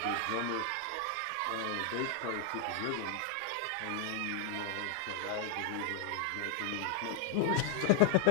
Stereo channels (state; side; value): different; both; correlation 0.00